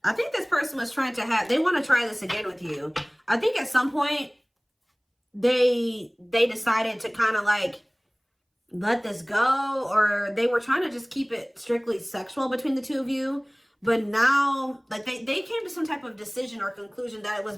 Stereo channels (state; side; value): identical; both; correlation 1.00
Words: I think this person was trying to they want to try this again with you. I think at some point they decided to kind of like let this go, or they were trying to just keep it strictly sexual between the two of you. But now, like they came to some type of decision or conclusion that it was